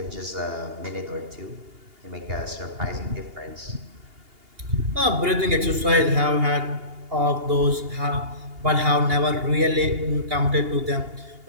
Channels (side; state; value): left; late; 2.8 ms